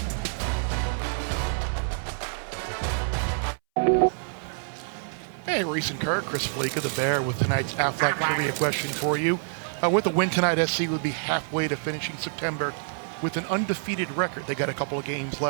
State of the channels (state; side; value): silent; left; 60 dB below the other